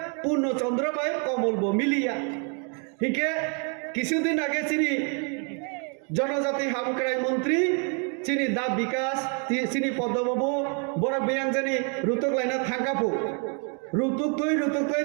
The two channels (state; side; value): quieter; left; 39.0 dB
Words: পূর্ণচন্দ্র বাই কমল ব মিলিয়া হিকে কিছুদিন আগে চিনি জনজাতি হামক্রাই মন্ত্রী চিনি দা বিকাশ চিনি পদ্মবাবু বড় বিয়াংজানি রুতুক লাইনা থাকাপো রুতুক তৈ